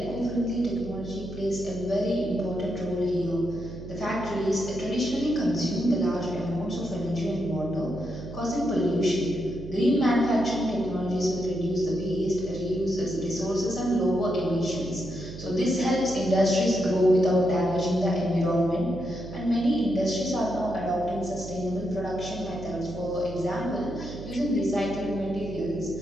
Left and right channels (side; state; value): right; noise; hum, 11 dB below the sound